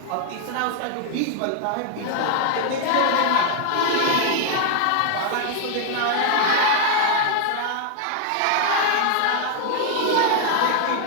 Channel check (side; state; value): both; different; correlation 0.00